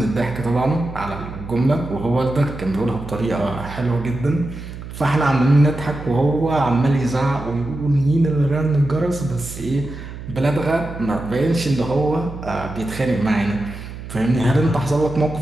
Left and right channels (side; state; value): right; noise; hum, 11 dB below the sound